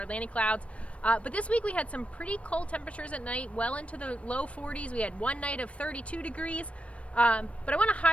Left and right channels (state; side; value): late; right; 0.063 ms